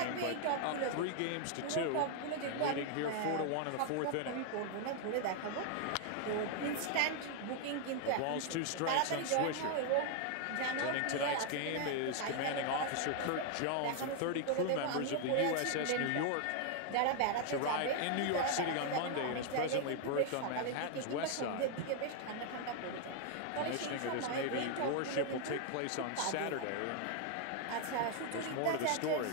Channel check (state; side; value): different; both; correlation 0.00